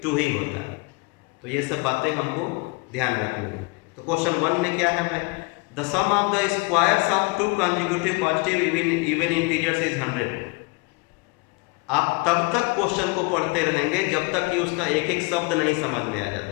2 ही होता है। तो ये सब बातें हमको ध्यान रखनी है। तो क्वेश्चन 1 में क्या है भाई? The sum of the squares of 2 consecutive positive even integers is 100। आप तब तक क्वेश्चन को पढ़ते रहेंगे जब तक कि उसका एक एक शब्द नहीं समझ में आ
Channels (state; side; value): quieter; right; 27.8 dB